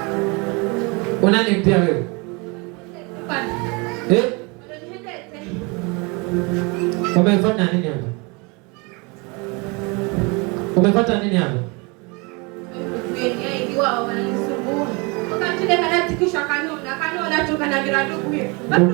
Unani pia wewe? Umefanya nini hapa? Umepata nini hapa?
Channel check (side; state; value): left; quieter; 29.2 dB